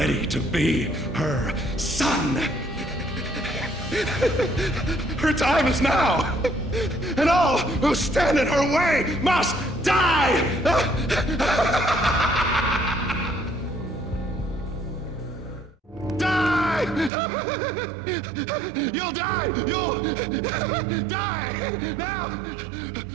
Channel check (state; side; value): drops out; left; at 17.1 s